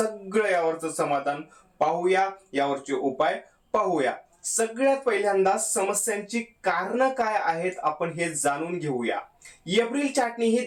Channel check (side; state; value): both; identical; correlation 1.00